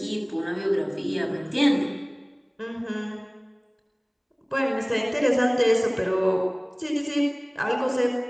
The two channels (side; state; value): both; identical; correlation 1.00